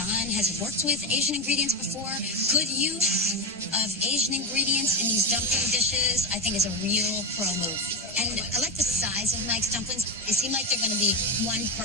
has worked with Asian ingredients before. Good use of Asian ingredients in these dumpling dishes, I think, is a real pro move. And I like the size of Mike's dumplings. They seem like they're going to be one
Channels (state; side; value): normal; both; correlation 0.13